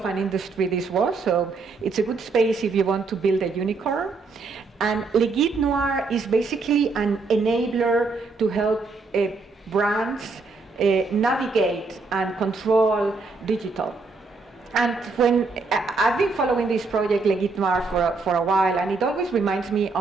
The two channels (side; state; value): left; quieter; 4.0 dB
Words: an industry this was. So it's a good space if you want to build a unicorn. And Le Guide Noir is basically an enabler to help brands navigate and control digital. And when I've been following this project, Le Guide Noir, for a while, and it always reminds me